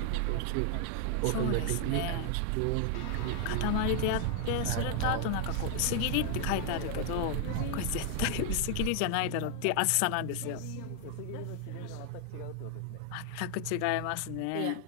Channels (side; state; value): both; different; correlation 0.00